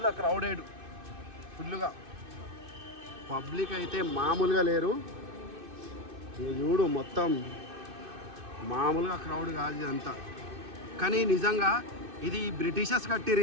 క్రౌడెడ్ ఫుల్గా. పబ్లిక్ అయితే మామూలుగా లేరు. చూడు మొత్తం మామూలుగా క్రౌడ్ కాదు ఇదంతా. కానీ నిజంగా ఇది బ్రిటిషర్స్ కట్టిరు,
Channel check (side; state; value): left; late; 2.6 ms